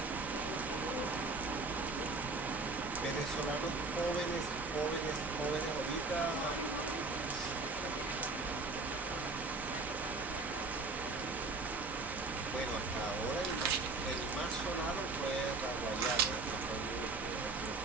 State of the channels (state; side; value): quieter; left; 3.6 dB